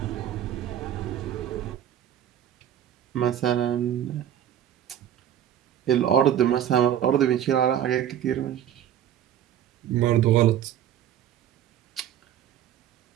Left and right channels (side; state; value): left; quieter; 10.5 dB